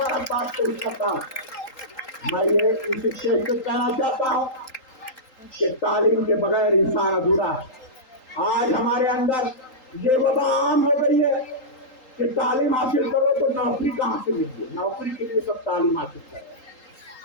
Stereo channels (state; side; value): late; right; 3.8 ms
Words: پیش کرتا ہوں. میں یہ اس اسٹیج پہ کہنا چاہتا ہوں کہ تعلیم کے بغیر انسان ادھورا ہے. آج ہمارے اندر یہ وبا عام ہو گئی ہے کہ تعلیم حاصل کرو تو نوکری کہاں سے ملے, نوکری کے لیے سب تعلیم حاصل